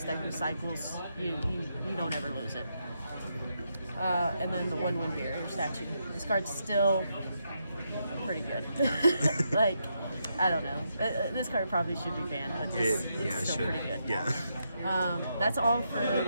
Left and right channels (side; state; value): both; inverted; correlation -0.81